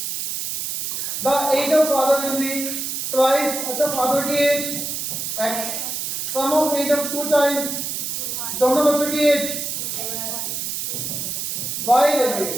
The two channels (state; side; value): noise; right; hiss, 3 dB below the sound